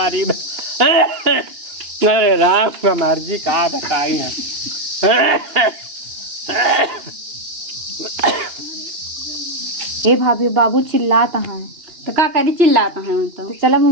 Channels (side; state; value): left; late; 2.9 ms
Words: अरे राम का मर्जी का बताई है। ए भाभी बाबू चिल्लाता है तो का करी चिल्लाता है उन तो चला